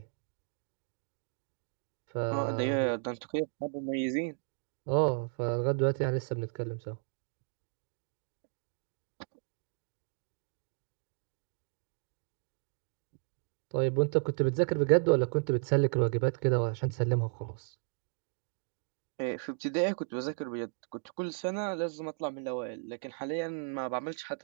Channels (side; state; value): left; silent; 55 dB below the other